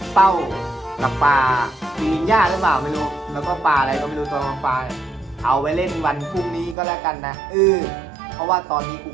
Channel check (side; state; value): left; drops out; at 6.8 s